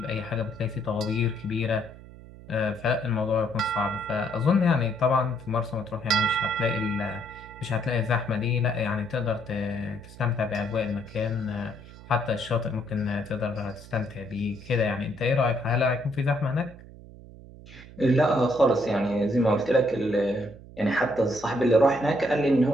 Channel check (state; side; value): noise; right; hum, 18 dB below the sound